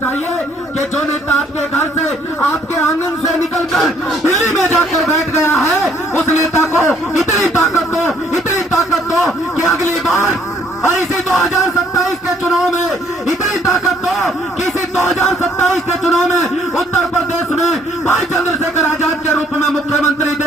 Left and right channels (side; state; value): both; normal; correlation 0.63